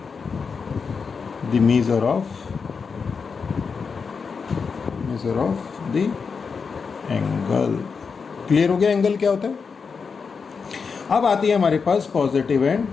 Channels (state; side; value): quieter; right; 5.4 dB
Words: the measure of the angle। Clear हो गया एंगल क्या होता है। अब आती है हमारे पास positive